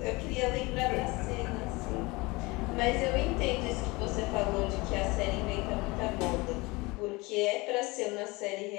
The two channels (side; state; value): right; quieter; 23.9 dB